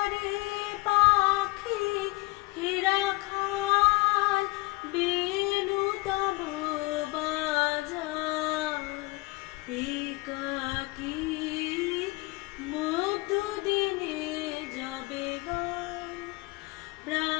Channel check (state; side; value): quieter; right; 23.3 dB